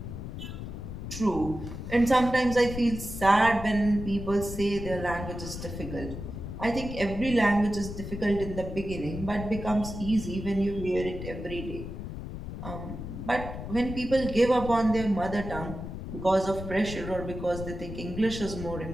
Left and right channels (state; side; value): noise; left; rumble, 8 dB below the sound